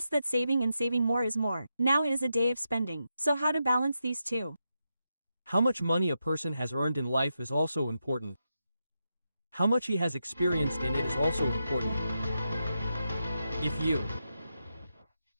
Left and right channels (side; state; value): both; inverted; correlation -0.86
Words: that saving and saving more is more. Now it is a day of spending. So how to balance these two? How much money a person has earned in life is also important. How much he has experienced in it is also important. If you